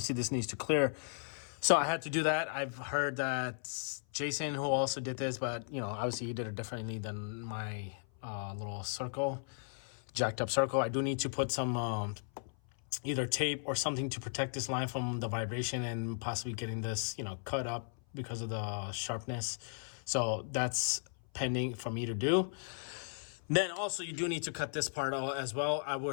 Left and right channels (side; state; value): right; silent; 54 dB below the other